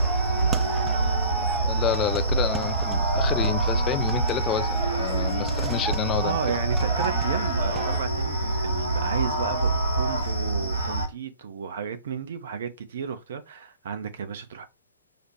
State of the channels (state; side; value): inverted; both; correlation -0.46